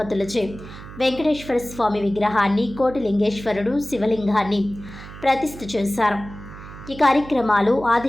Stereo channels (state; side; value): noise; right; hum, 15 dB below the sound